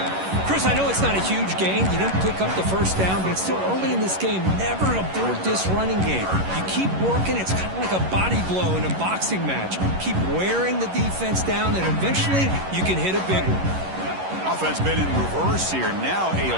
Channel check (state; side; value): late; left; 11 ms